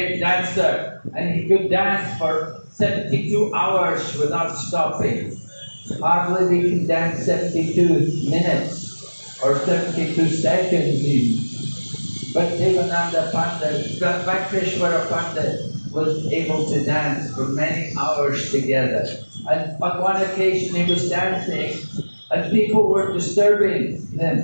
dancer and he could dance for 72 hours without stopping. Hardly we can dance 72 minutes or 72 seconds even. But Devānanda Pandit, Vakreshwara Pandit was able to dance for many hours together. And on one occasion he was dancing and people were disturbing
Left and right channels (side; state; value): both; inverted; correlation -1.00